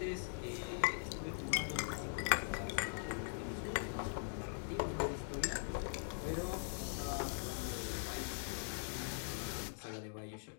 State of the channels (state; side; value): silent; right; digital silence